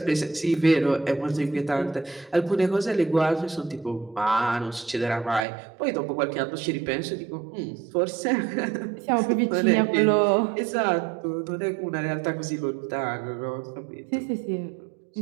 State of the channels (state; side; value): drops out; left; at 5.5 s